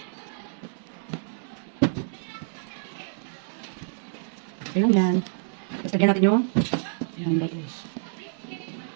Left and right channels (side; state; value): left; silent; 59 dB below the other